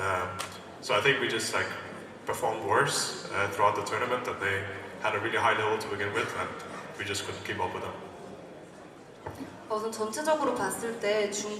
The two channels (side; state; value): both; identical; correlation 1.00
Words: So I think we just like performed worse throughout the tournament, and they had a really high level to begin with, and we just couldn't keep up with them. 우선 전체적으로 봤을 때